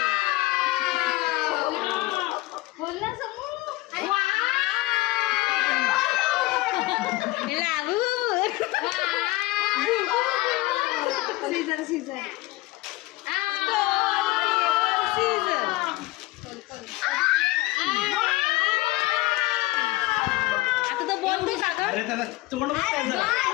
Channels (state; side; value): quieter; right; 19.5 dB